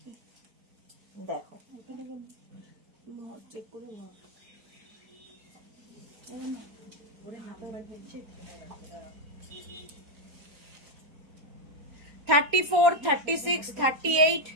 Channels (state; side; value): late; left; 4.3 ms